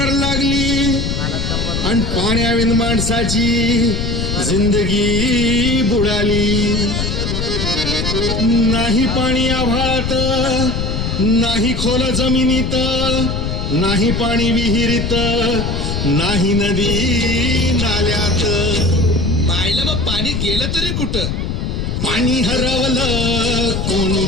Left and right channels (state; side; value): noise; left; rumble, 2 dB below the sound